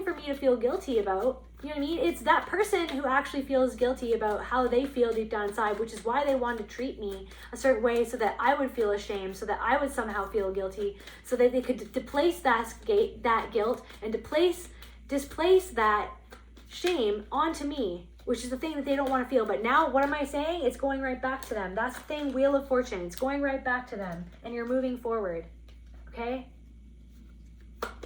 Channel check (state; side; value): identical; both; correlation 1.00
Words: for me to feel guilty about. You know what I mean? It's that person who actually feels guilty about how they feel deep down inside, which is why they wanted to treat me a certain way, so that I would feel ashamed, so that I would somehow feel guilty, so that they could displace that guilt and displace that shame onto me, which is the thing that they don't want to feel. But now, what am I saying? It's going right back to them. That's the thing, Wheel of Fortune. It's going right back to them, and you're moving forward, okay?